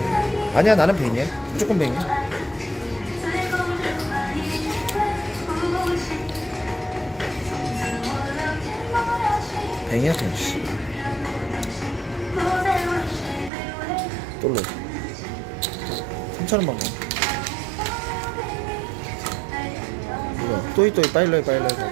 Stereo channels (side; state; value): left; drops out; at 13.5 s